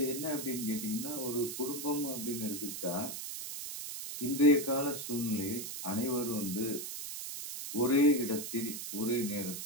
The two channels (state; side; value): noise; right; hiss, 7 dB below the sound